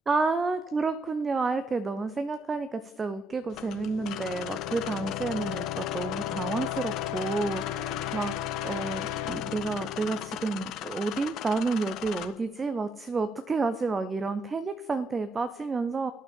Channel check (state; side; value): normal; both; correlation 0.72